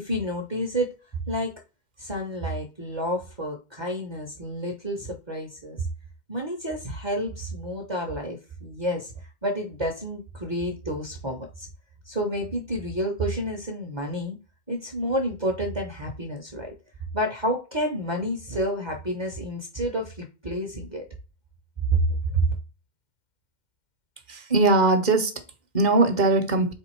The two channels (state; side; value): late; right; 2.1 ms